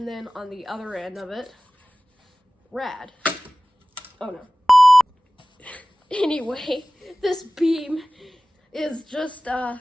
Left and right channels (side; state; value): both; normal; correlation 0.98